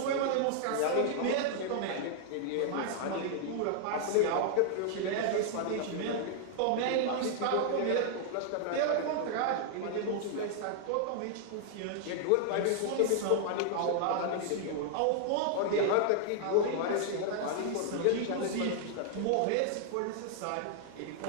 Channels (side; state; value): both; different; correlation -0.01